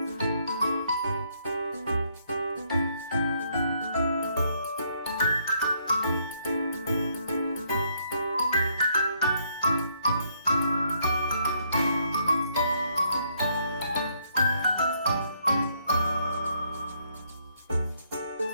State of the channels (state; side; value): inverted; both; correlation -0.71